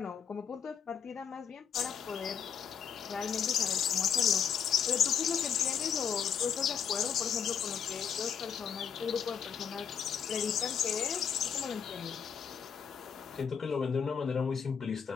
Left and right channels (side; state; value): right; quieter; 7.5 dB